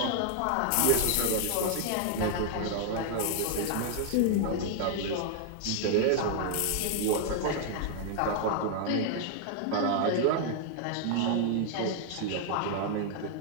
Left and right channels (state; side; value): different; both; correlation 0.00